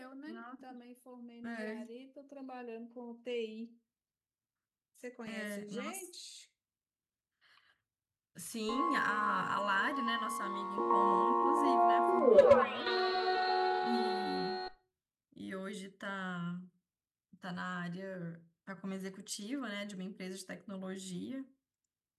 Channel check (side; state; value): both; identical; correlation 1.00